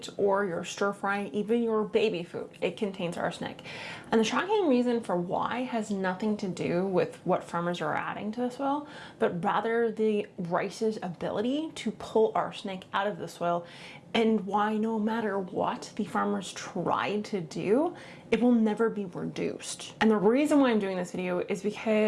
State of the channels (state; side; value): identical; both; correlation 1.00